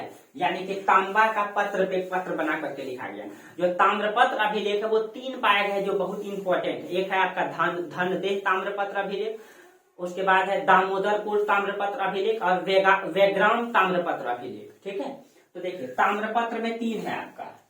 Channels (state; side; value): identical; both; correlation 1.00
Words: यानी कि तांबा का पत्र पे पत्र बना करके लिखा गया। जो ताम्रपत्र अभिलेख है वो 3 पाए गए जो बहुत इंपॉर्टेंट है। एक है आपका धनदेह ताम्रपत्र अभिलेख, उसके बाद है दामोदरपुर ताम्रपत्र अभिलेख और वेग्राम ताम्रपत्र अभिलेख, ठीक है। तो देखिए ताम्रपत्र में 3 है आपका,